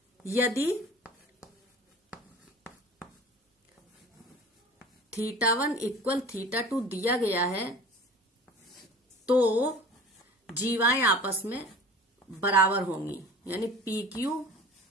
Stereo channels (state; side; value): normal; both; correlation 0.41